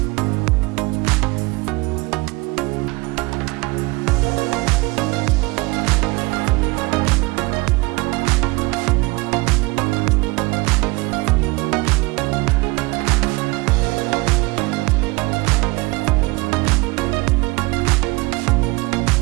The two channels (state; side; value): quieter; left; 24.3 dB